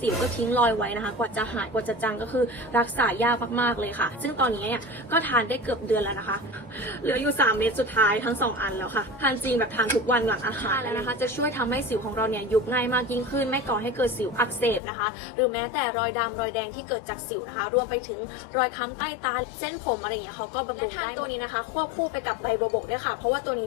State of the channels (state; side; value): drops out; right; at 14.8 s